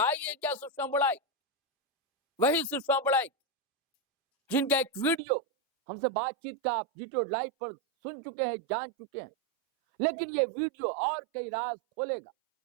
है क्या सुषमा बड़ाइक? वही सुषमा बड़ाइक जिनका एक वीडियो हमसे बातचीत का आप जीटो लाइव पर सुन चुके हैं, जान चुके हैं, लेकिन ये वीडियो और कई राज खोलेगा,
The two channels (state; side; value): drops out; left; at 5.2 s